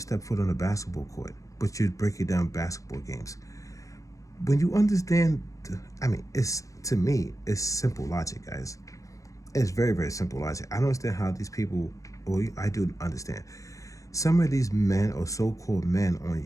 foot on a basketball court, but you're breaking down basketball games. When you understand, I mean, it's to me, it's simple logic, guys. It's very, very simple logic. I don't understand how these people, well, I do understand. Some of these men or so-called men on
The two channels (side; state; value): right; late; 0.16 ms